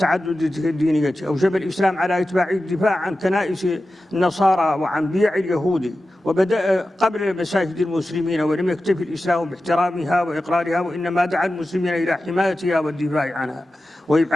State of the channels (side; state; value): both; normal; correlation 0.93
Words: الدينية، أوجب الإسلام على إتباع الدفاع عن كنائس النصارى وعن بيع اليهود، وبدأ قبل مساجد المسلمين، ولم يكتفي الإسلام باحترامها وإقرارها، وإنما دعا المسلمين إلى حمايتها والدفاع عنها